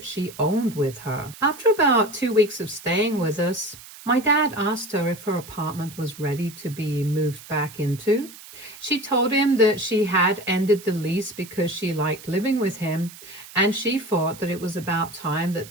she owned with her. After about 2 weeks of staying with us, my dad asked her if her apartment was ready to be moved back into. She told him that she had ended the lease because she liked living with him, and she thought that it was about time that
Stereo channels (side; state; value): right; noise; hiss, 17 dB below the sound